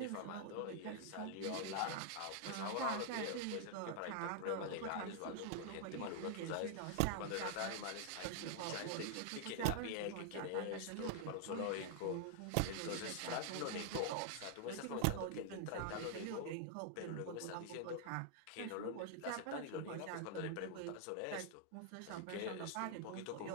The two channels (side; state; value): both; different; correlation -0.01